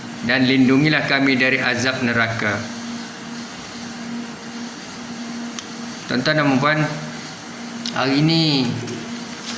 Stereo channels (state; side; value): identical; both; correlation 1.00